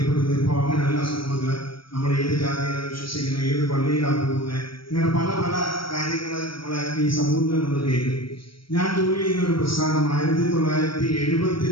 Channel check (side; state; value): right; late; 0.74 ms